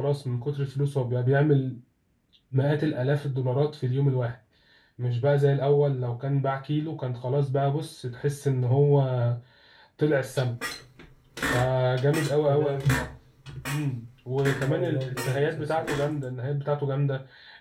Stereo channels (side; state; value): both; identical; correlation 1.00